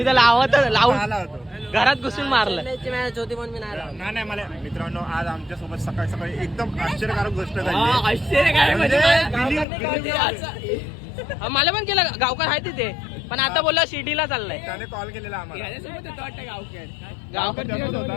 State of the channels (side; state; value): right; drops out; at 9.7 s